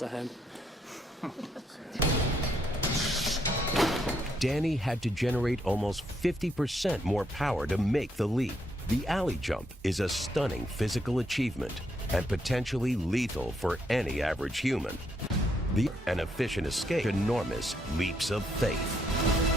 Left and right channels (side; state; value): both; normal; correlation 0.75